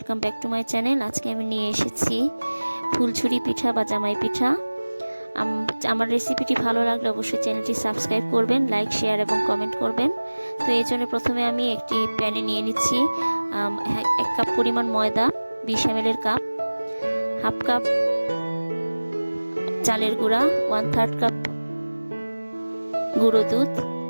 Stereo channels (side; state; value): both; inverted; correlation -1.00